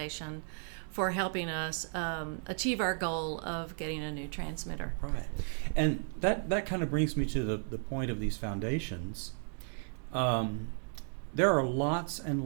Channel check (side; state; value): left; silent; 55 dB below the other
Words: for helping us achieve our goal of getting a new transmitter. Right. And that kind of brings me to the point of these foundations. There are lots